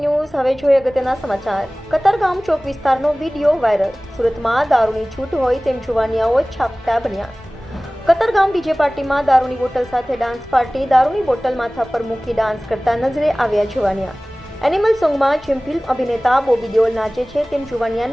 હવે જોઈએ અગત્યના સમાચાર. કતારગામ ચોક વિસ્તારનો વિડીયો વાયરલ. સુરતમાં દારૂની છૂટ હોય તેમ જુવાનિયાઓ છાપટા બન્યા. કતારગામ ડીજે પાર્ટીમાં દારૂની બોટલ સાથે ડાન્સ પાર્ટી. દારૂની બોટલ માથા પર મૂકી ડાન્સ કરતા નજરે આવ્યા જુવાનિયા. એનિમલ સોંગમાં જેમ ફિલ્મ અભિનેતા બોબી દેઓલ નાચે છે તેમ જુવાનિયા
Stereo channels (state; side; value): normal; both; correlation 0.98